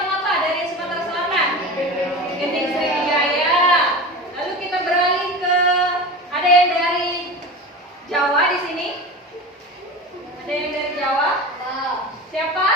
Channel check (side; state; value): both; normal; correlation 0.30